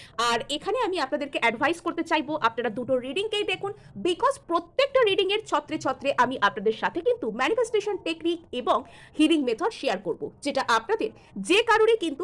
আর এখানে আমি আপনাদেরকে অ্যাডভাইস করতে চাইবো আপনারা দুটো রিডিংকেই দেখুন, বিকজ প্রত্যেকটা রিডিং এর ছত্রে ছত্রে আমি আপনাদের সাথে কিন্তু ম্যানিফেস্টেশন টেকনিক এবং হিলিং মেথড শেয়ার করব, যেটা আপনাদের যে কারোরই কিন্তু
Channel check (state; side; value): identical; both; correlation 1.00